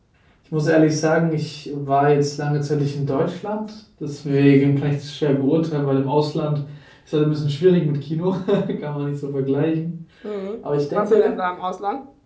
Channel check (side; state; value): both; identical; correlation 1.00